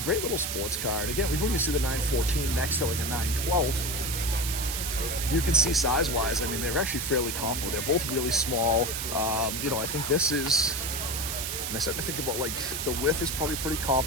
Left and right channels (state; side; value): noise; right; hiss, 3 dB below the sound